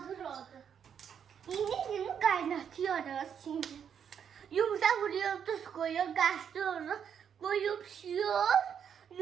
oldu. Yine kaynatıyoruz şimdi. Yumurta vuruyor, tuz koyuyor, karıştırıyoruz. Koyup pişiyor.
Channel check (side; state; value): left; quieter; 8.0 dB